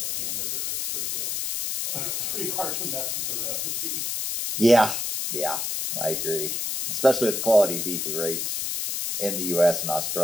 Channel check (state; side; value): noise; left; hiss, 1 dB below the sound